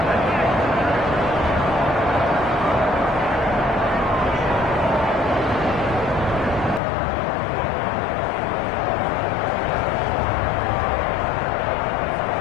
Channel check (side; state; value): right; drops out; at 6.8 s